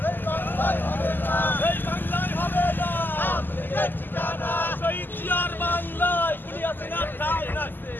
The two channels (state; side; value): late; right; 0.091 ms